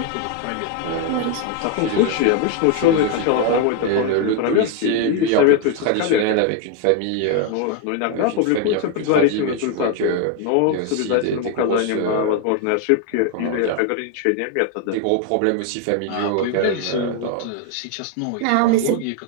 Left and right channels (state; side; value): different; both; correlation 0.01